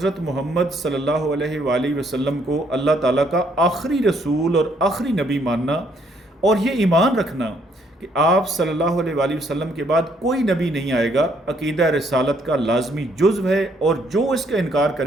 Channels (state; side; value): normal; both; correlation 0.69